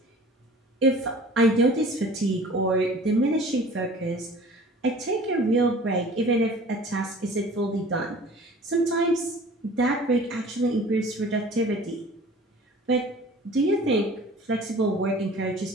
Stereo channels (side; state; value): both; normal; correlation 0.45